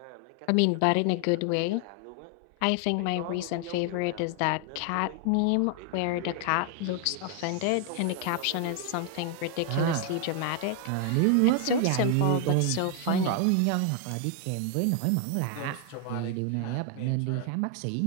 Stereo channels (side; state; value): both; different; correlation 0.00